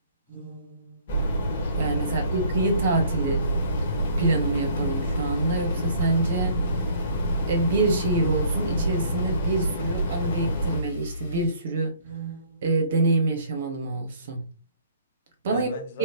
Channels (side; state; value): both; inverted; correlation -0.58